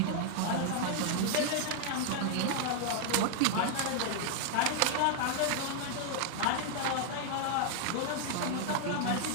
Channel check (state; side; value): different; both; correlation 0.00